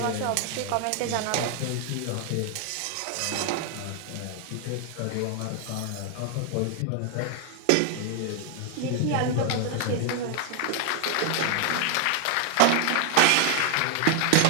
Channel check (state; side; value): different; both; correlation 0.00